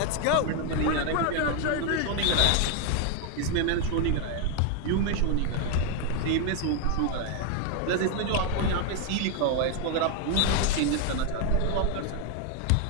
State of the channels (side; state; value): both; different; correlation 0.01